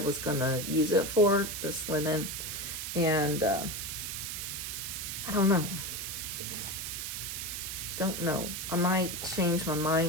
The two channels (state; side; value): noise; right; hiss, 5 dB below the sound